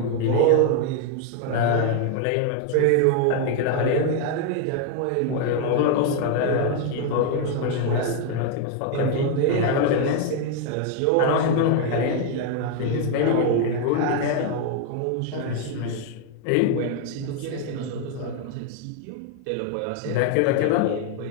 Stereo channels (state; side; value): different; both; correlation 0.00